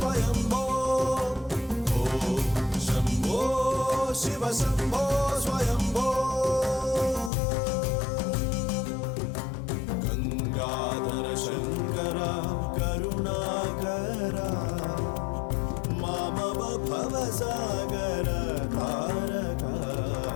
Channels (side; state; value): right; drops out; at 7.3 s